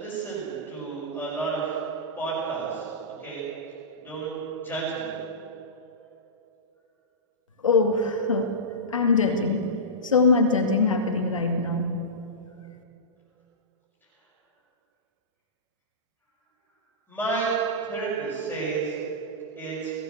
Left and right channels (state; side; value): normal; both; correlation -0.19